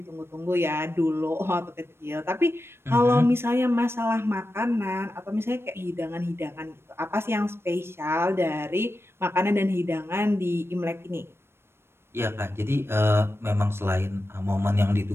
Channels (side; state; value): left; late; 0.12 ms